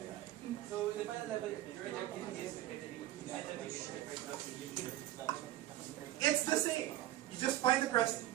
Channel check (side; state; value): left; quieter; 14.5 dB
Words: So the final level, your objective is to get the demon. It's the same. You just find the crest,